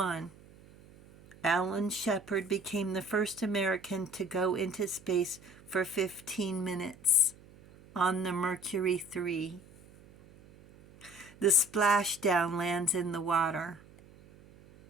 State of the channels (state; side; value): noise; right; hum, 23 dB below the sound